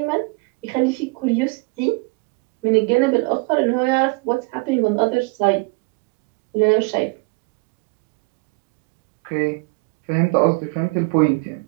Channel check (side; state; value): left; quieter; 28.9 dB